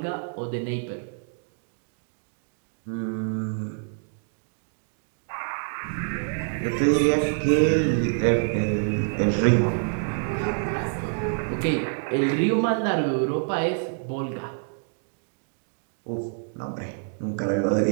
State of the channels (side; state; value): left; silent; digital silence